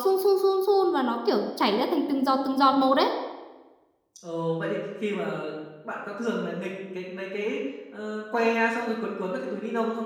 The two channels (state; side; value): identical; both; correlation 1.00